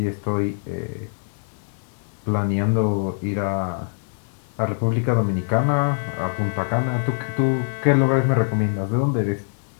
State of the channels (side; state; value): right; silent; 63 dB below the other